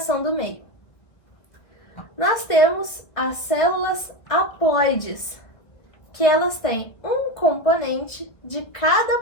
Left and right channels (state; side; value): late; right; 1.3 ms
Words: do meio. Nós temos as células haploides, que elas têm um componente de